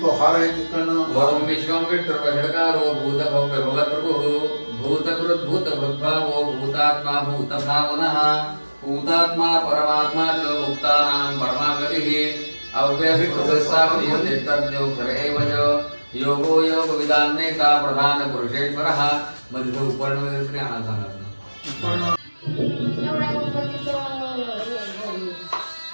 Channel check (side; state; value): both; inverted; correlation -1.00